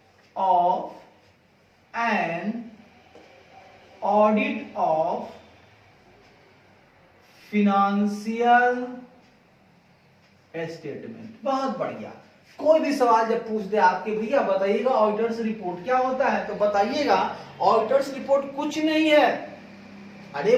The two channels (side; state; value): both; identical; correlation 1.00